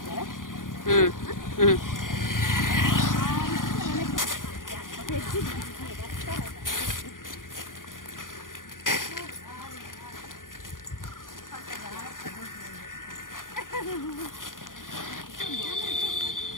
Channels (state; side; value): late; right; 0.89 ms